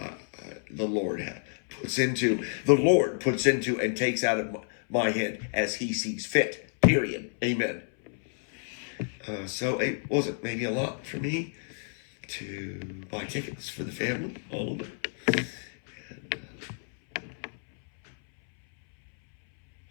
The Lord puts into and takes out of my head as he sees fit. Period. Amen. So it wasn't maybe a lot for me to buy tickets for the family, all of it.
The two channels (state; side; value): silent; right; 58 dB below the other